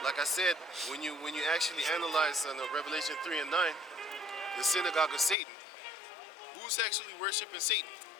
like I said, when you actually analyze on Revelation 3 and 9, the synagogue of Satan, who's actually worshiping Satan?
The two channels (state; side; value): drops out; right; at 5.4 s